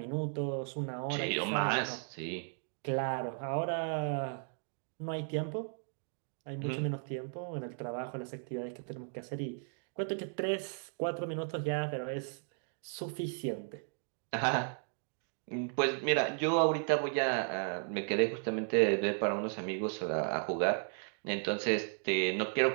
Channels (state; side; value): silent; left; 54 dB below the other